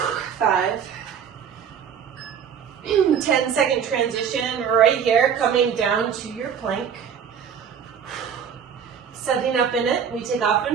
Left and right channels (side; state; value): left; quieter; 7.6 dB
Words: 5. 10-second transition right here, coming down to your plank. Setting up in it. We take off